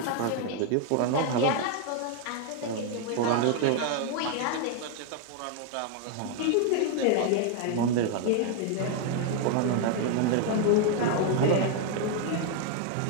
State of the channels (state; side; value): different; both; correlation 0.00